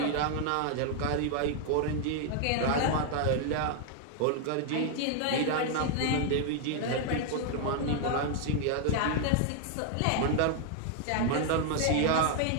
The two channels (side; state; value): both; different; correlation 0.00